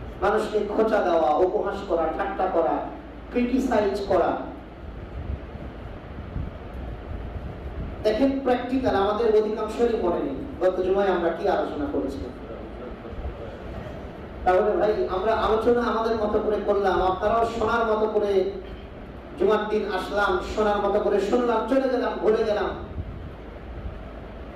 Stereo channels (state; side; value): identical; both; correlation 1.00